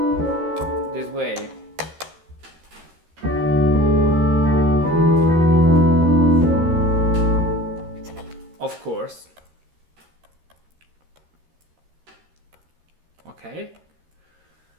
this way. Of course. Okay.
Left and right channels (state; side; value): late; left; 13 ms